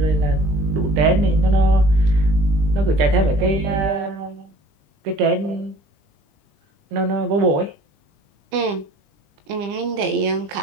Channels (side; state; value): left; late; 20 ms